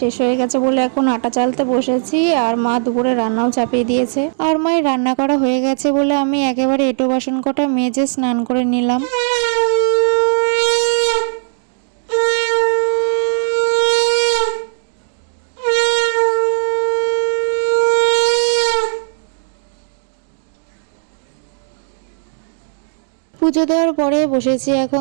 শেষ হয়ে গেছে বলে এখন আটা চালতে বসেছি। আর মা দুপুরে রান্নাও চাপিয়ে দিয়েছে। আর মায়ের রান্না করা হয়ে গেছে বলে আমি একেবারে এঁটো বাসন কটা মেজে স্নান করে নিলাম। পুজো দেওয়ার পরে বসেছি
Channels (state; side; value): silent; left; digital silence